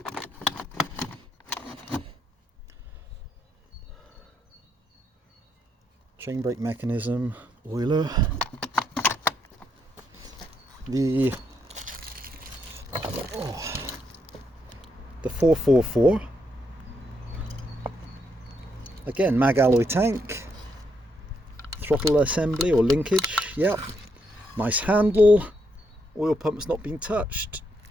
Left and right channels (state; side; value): normal; both; correlation 0.78